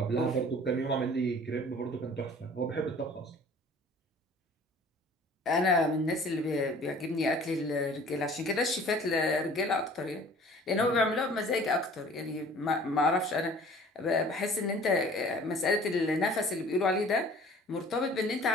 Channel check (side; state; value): both; normal; correlation 0.49